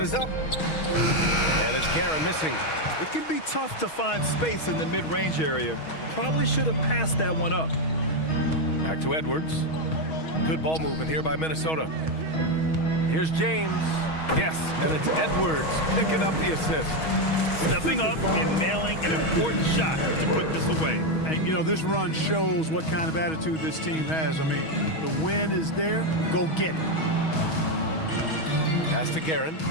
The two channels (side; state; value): right; late; 6.3 ms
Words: is up. And it's Karen missing. It can be tough to find space in the mid-range area. Probably should have passed that one up. Back to Edwards. Good ball movement here by Minnesota. Here's James. Yes, and it's Edwards picking up the assist. Stepping up and nailing an important shot to put this away. And, you know, this run shows what kind of attitude this team has. I mean, the win is there. Go get it. Pass to Guerin.